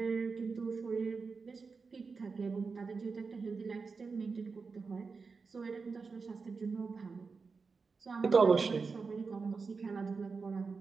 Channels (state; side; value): quieter; left; 4.7 dB